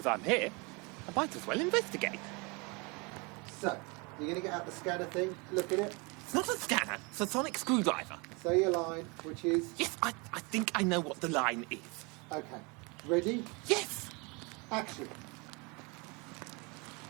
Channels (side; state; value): left; quieter; 29.2 dB